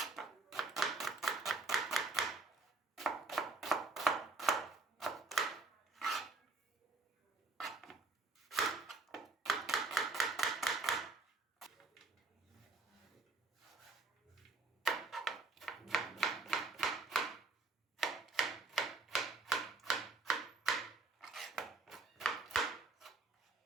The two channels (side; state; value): left; quieter; 3.5 dB